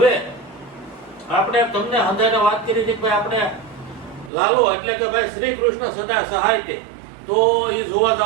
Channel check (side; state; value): left; drops out; at 4.3 s